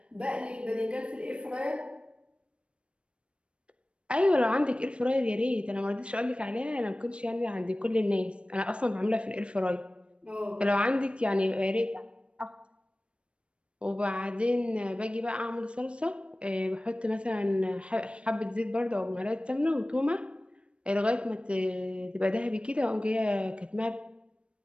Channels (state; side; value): late; left; 0.058 ms